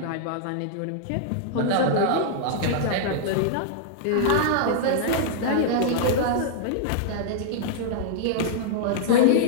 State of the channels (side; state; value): both; different; correlation -0.01